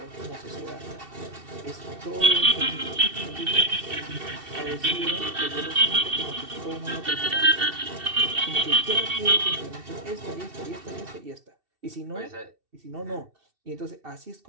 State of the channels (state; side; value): late; left; 2.7 ms